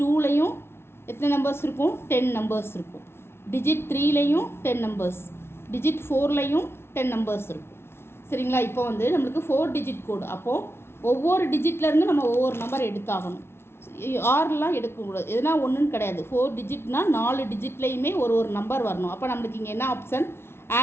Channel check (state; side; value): late; right; 0.12 ms